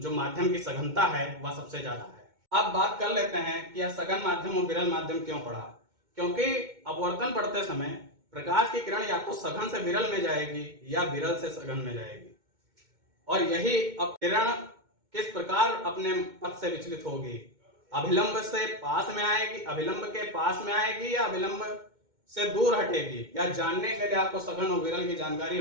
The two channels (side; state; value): left; late; 2.2 ms